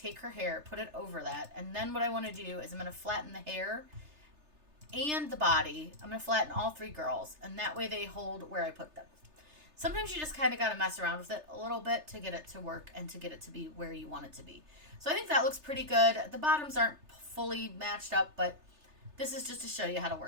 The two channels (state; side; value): late; left; 3.3 ms